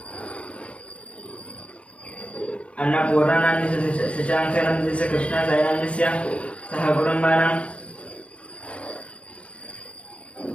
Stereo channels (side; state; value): right; late; 0.061 ms